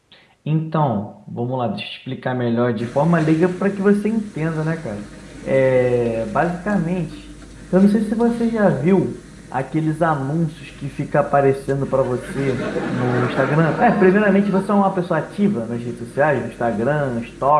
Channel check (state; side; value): identical; both; correlation 1.00